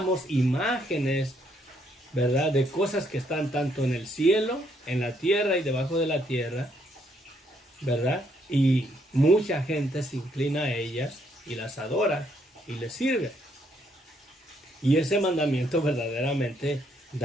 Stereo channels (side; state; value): both; normal; correlation 0.72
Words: imágenes, ¿verdad? De cosas que están tanto en el cielo, en la tierra y debajo de la tierra, ¿verdad? Y mucha gente se inclina a ellas y las adora y les sirve. Y ese mandamiento verdaderamente